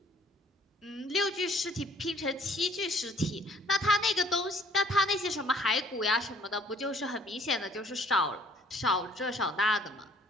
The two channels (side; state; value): both; normal; correlation 0.58